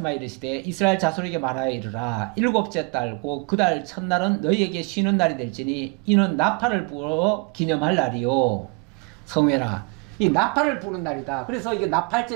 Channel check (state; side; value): quieter; left; 32.2 dB